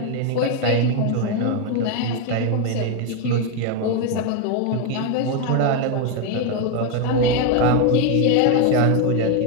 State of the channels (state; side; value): different; both; correlation 0.02